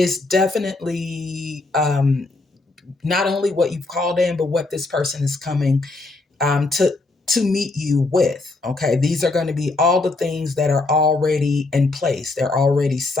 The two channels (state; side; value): quieter; right; 3.3 dB